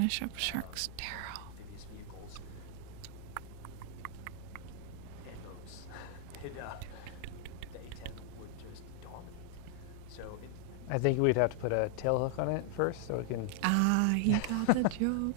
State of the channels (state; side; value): different; both; correlation 0.00